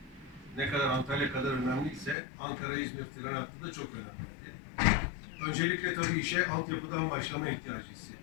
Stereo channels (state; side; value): drops out; right; at 2.1 s